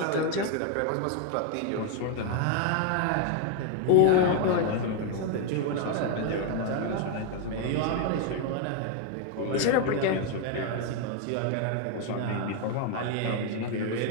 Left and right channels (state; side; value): different; both; correlation 0.01